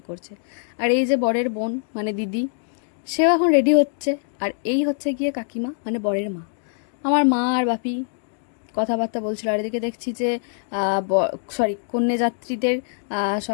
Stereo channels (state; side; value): silent; right; digital silence